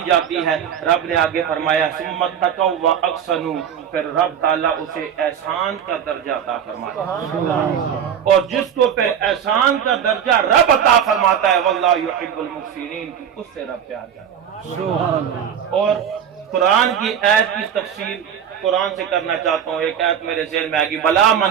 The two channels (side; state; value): left; quieter; 8.6 dB